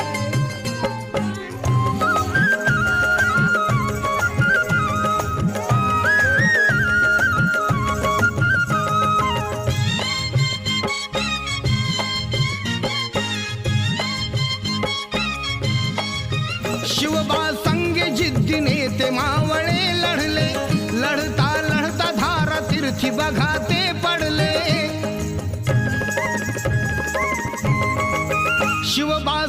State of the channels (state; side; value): identical; both; correlation 1.00